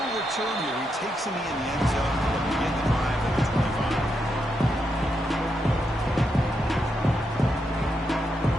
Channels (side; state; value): both; normal; correlation 0.82